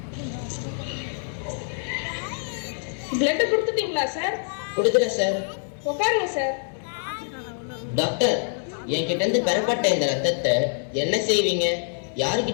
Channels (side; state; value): right; silent; 62 dB below the other